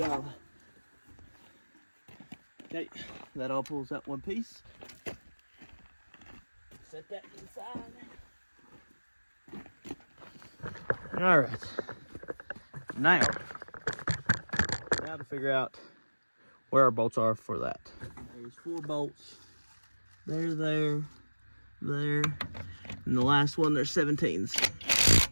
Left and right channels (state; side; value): inverted; both; correlation -1.00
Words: Okay, that all pulls out one piece. Set that inside. All right. Now to figure out where our bolts are for that. There's 4 bolts. There, there, there, and the last one, there's 17s.